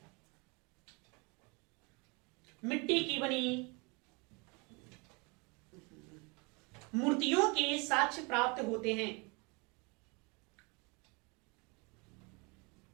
मूर्तियों के साक्ष्य प्राप्त होते हैं।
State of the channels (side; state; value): left; quieter; 29.5 dB